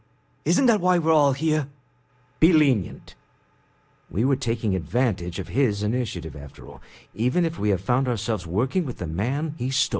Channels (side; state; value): both; identical; correlation 1.00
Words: Isn't that why we're all here? Be lenient. We were taking advantage of his initiative, after all, even if we have found ourselves working with the man he